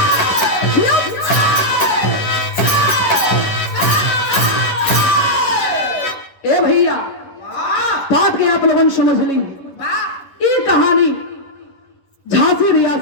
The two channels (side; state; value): right; late; 10 ms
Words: चलती आप लोगों समझ ली। ये कहानी झांसी